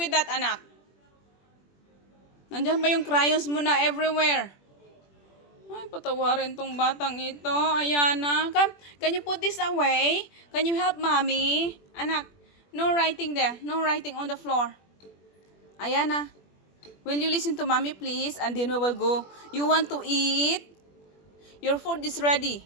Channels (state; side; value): late; right; 21 ms